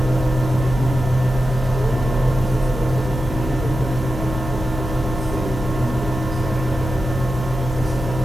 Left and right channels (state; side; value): normal; both; correlation 0.91